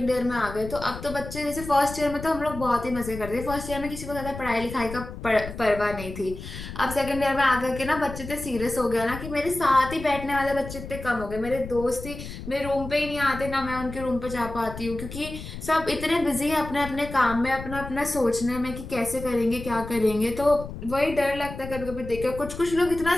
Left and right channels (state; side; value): noise; left; rumble, 11 dB below the sound